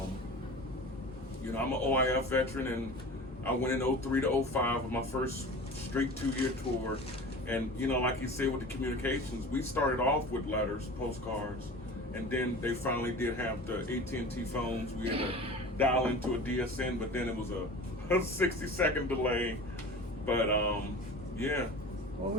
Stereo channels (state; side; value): normal; both; correlation 0.36